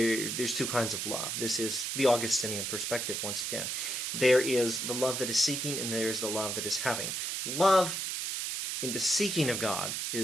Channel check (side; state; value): right; noise; hiss, 2 dB below the sound